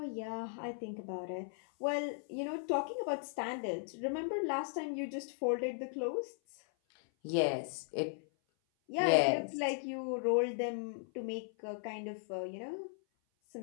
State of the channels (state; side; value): silent; right; 53 dB below the other